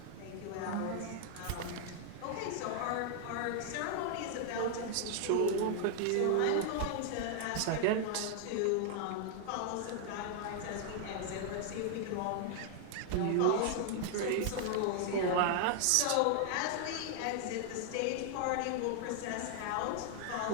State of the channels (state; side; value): different; both; correlation 0.00